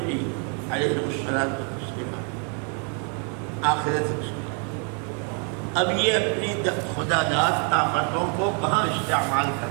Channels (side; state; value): left; quieter; 39.2 dB